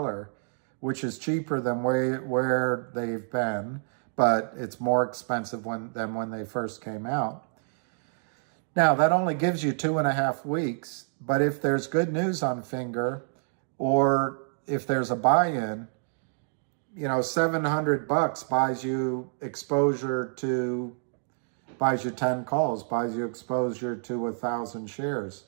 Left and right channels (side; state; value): left; silent; digital silence